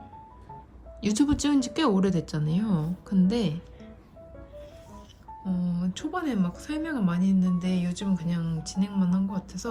유튜브 찍은 지 꽤 오래됐잖아요. 근데 초반에 막 설명을 많이 했는데 요즘은 그냥 진행만 한 것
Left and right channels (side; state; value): both; identical; correlation 1.00